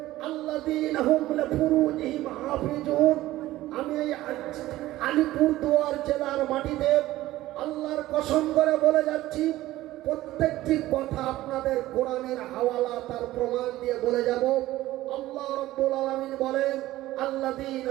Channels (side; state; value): left; quieter; 16.0 dB